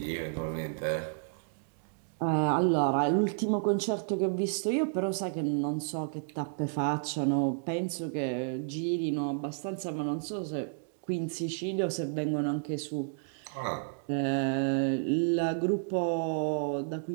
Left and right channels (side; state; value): left; silent; digital silence